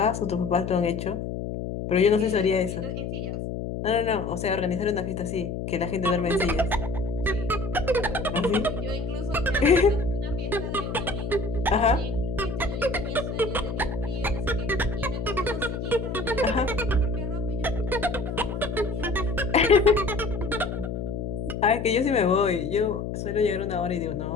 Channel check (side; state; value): left; noise; hum, 4 dB below the sound